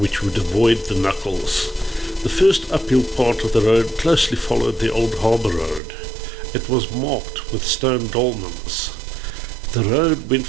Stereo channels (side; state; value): left; drops out; at 5.8 s